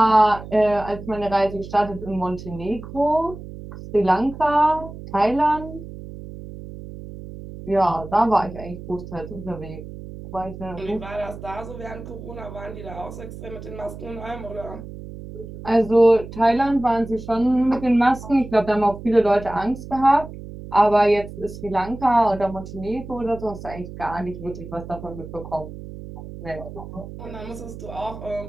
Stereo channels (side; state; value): right; noise; hum, 12 dB below the sound